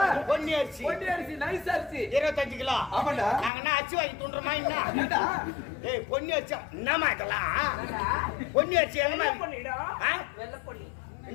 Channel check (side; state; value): right; drops out; at 3.5 s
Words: பொன்னி அரிசி ஒட்டி அரிசி நைஸ் அரிசி 25 கிலோ ஆமாண்டா. நாங்கன்னா அச்சு வாங்கி துண்டுறோமா என்ன ஏண்டா ஏய் பொன்னி அரிசி என்னமா இதெல்லாம் பொன்னி அரிசி என்னமா பண்ணிடும் ஆ? வெள்ளை பொண்ணி.